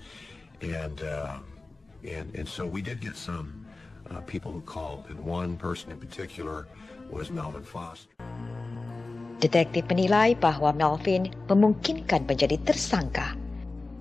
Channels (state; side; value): quieter; right; 3.4 dB